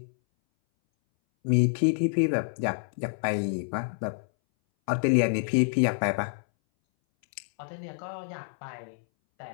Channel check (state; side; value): silent; right; 60 dB below the other